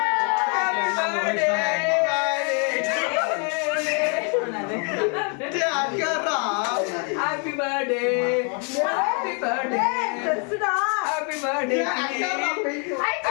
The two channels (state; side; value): quieter; right; 38.2 dB